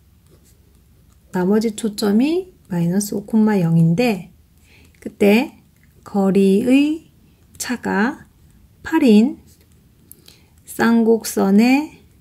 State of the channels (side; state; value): both; identical; correlation 1.00